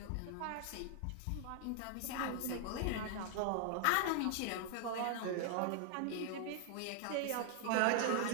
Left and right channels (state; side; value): different; both; correlation 0.00